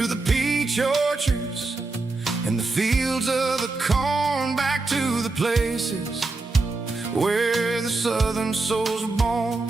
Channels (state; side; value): quieter; left; 3.5 dB